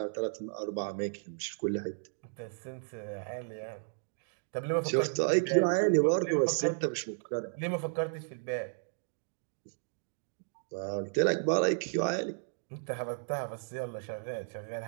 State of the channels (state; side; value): silent; left; digital silence